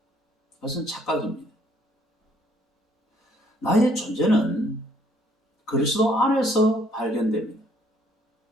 그것은 착각입니다. 나의 존재는 그리스도 안에서 발견됩니다.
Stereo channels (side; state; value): both; normal; correlation 0.64